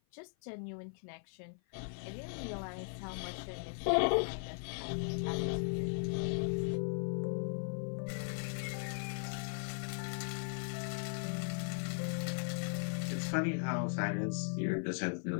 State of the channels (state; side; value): silent; right; 52 dB below the other